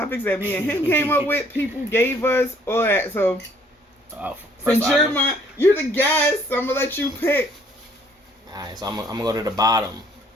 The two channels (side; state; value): both; normal; correlation 0.61